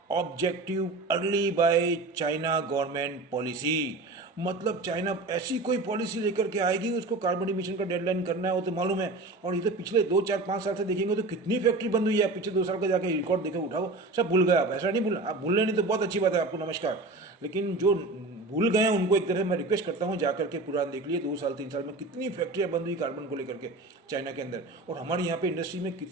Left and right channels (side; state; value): left; quieter; 3.2 dB